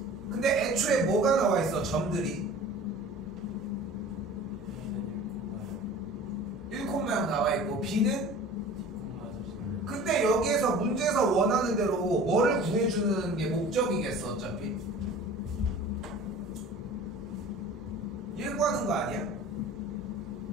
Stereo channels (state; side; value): normal; both; correlation 0.42